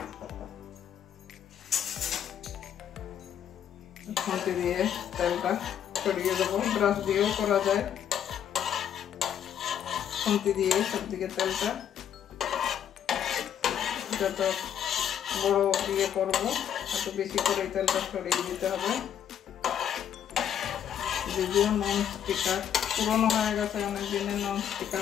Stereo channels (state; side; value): quieter; right; 9.4 dB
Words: খুঁটি দিয়ে তেলটা ছড়িয়ে দেবো, ব্রাশ দিয়েও করা যায়। খুঁটি দিয়ে সবদিকে তেলটা, যত বড় দিয়ে করবো এত বেশি করে তেলটা ছড়িয়ে দিতে হবে। যদিও নন স্টিকার পুরনো হয়ে গেছে, অনেক দিনের নন স্টিকার